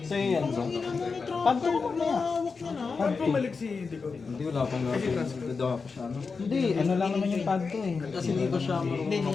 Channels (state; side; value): quieter; right; 4.8 dB